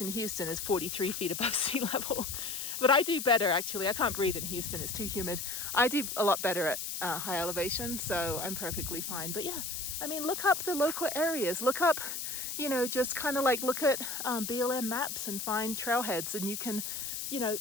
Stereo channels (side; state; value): left; noise; hiss, 4 dB below the sound